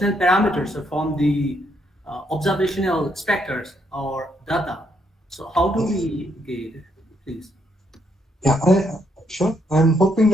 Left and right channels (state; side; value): normal; both; correlation 0.74